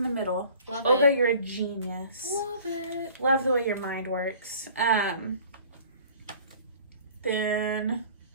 the middle. Love Olga, it. you're a genius. Love it. Love the way your mind works. Then,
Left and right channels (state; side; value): inverted; both; correlation -0.49